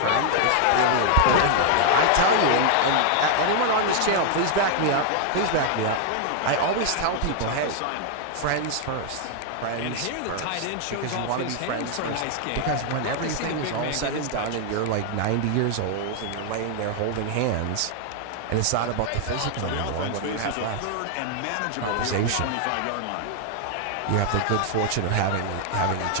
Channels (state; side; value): different; both; correlation 0.00